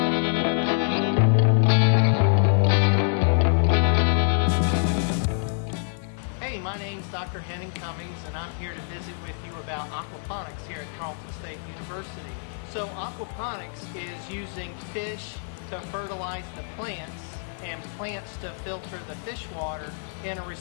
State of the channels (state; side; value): silent; right; 61 dB below the other